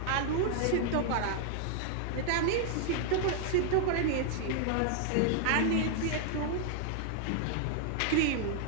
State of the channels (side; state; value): both; different; correlation 0.00